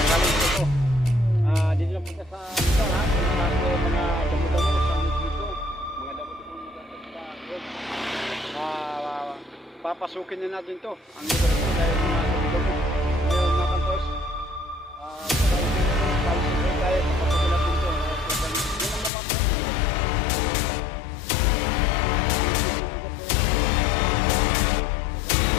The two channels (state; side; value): drops out; right; at 19.1 s